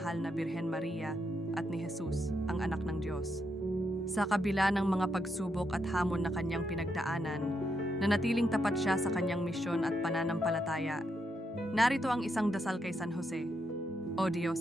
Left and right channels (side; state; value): both; normal; correlation 0.80